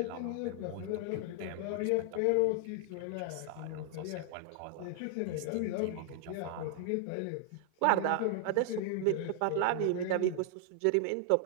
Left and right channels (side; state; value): both; different; correlation 0.00